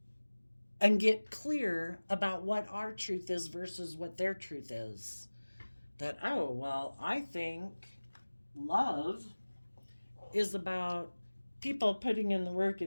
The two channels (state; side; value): inverted; both; correlation -1.00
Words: and get clear about what our truth is versus what their truth is. That, I think love is about people putting in the work